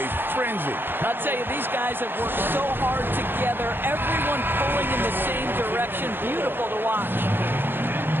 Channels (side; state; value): left; late; 0.10 ms